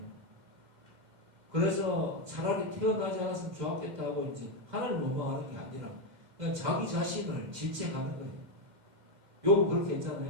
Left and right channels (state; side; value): late; left; 2.1 ms